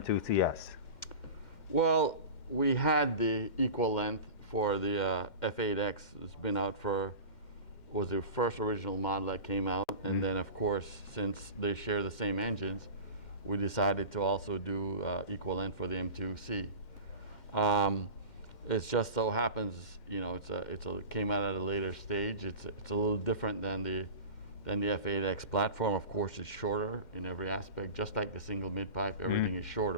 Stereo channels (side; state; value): right; late; 2.1 ms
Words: Well, we had the equal length for the F8X. It's been out was the first original model that came out. And then, of course, since they share the same engines, we decided to also do equal length for the M2C. It just so happens, you know, it came out at a later stage. It's a little different than the F8X platform. Of course, it's shorter in every aspect, just like the single mid pipe. Everything is